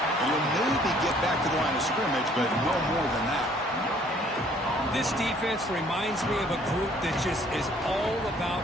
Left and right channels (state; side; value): normal; both; correlation 0.59